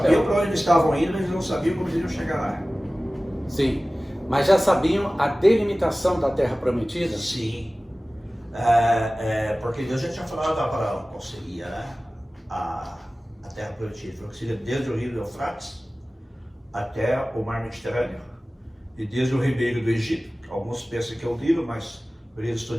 para onde eles estavam indo, mas eles não sabiam como eles iam chegar lá. Sim, mas já sabiam a delimitação da Terra Prometida? Sim. Porque Deus já tinha falado para qual seria, né? A Terra Prometida. Falou que seria desde o rio Eufrates até o Mar Mediterrâneo. E desde o ribeiro do Egito, alguns pensam que é o Nilo, mas maioria dos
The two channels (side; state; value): both; normal; correlation 0.97